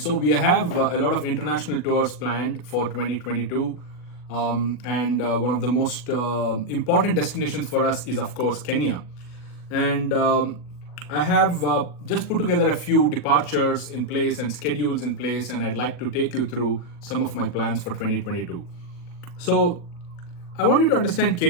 we have a lot of international tours planned for 2022. And one of the most important destinations for us is, of course, Kenya. And I have just put together a few departures in place and schedules in place, and I'd like to take you through some of my plans for 2022. So, I want you to understand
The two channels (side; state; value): right; late; 40 ms